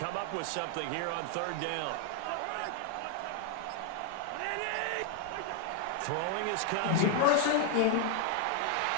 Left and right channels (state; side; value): different; both; correlation 0.00